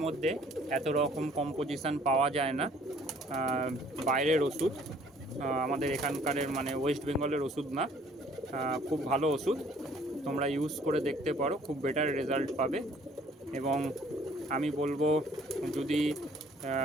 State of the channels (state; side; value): normal; both; correlation 0.58